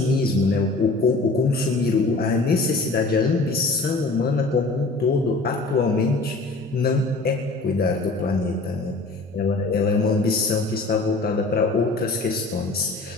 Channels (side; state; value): right; quieter; 3.3 dB